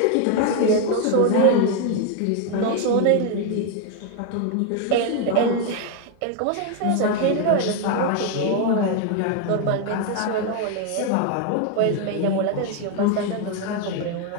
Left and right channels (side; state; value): both; different; correlation 0.01